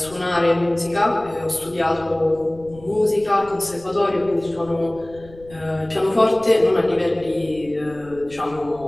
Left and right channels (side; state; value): left; noise; rumble, 21 dB below the sound